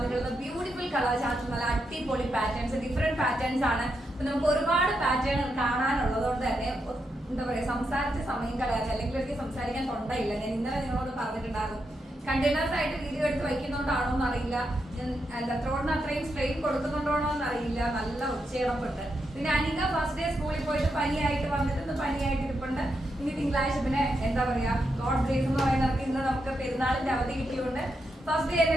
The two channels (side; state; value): both; normal; correlation 0.83